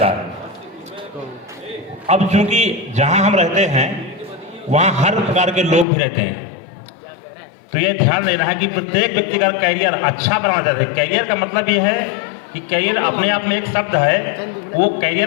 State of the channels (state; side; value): drops out; right; at 5.9 s